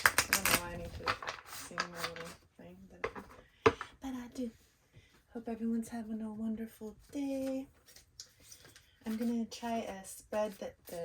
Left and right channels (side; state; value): both; identical; correlation 1.00